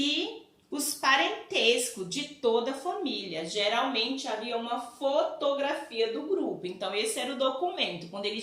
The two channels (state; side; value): identical; both; correlation 1.00